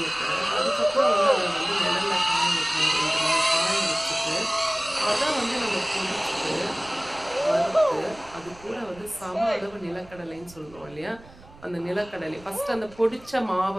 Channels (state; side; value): noise; right; rumble, 22 dB below the sound